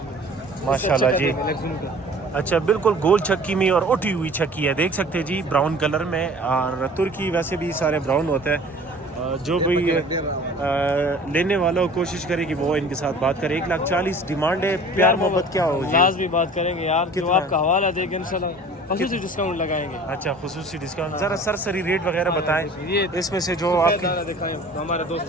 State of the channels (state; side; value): normal; both; correlation 0.46